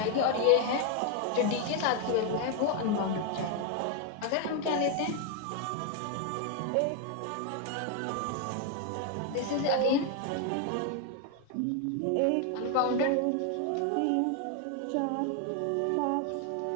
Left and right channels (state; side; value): different; both; correlation 0.01